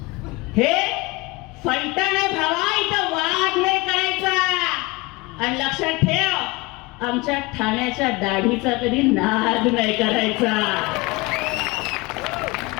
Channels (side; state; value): right; quieter; 23.6 dB